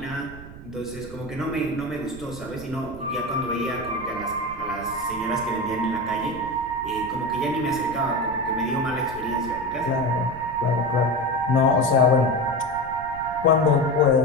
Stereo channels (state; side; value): noise; right; rumble, 15 dB below the sound